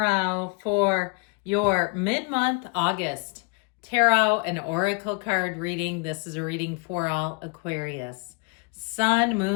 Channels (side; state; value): right; quieter; 32.8 dB